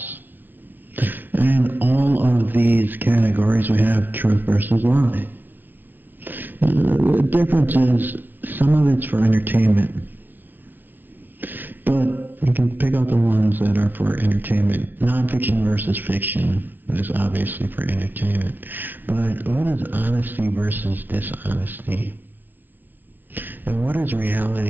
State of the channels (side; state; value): left; late; 0.092 ms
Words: In all of these categories, we have truth versus lie. The difference is some of it's for entertainment, but you can pick out the ones that are for entertainment. Non-fiction versus fiction is obviously for entertainment, but what is honesty versus dishonesty? And what is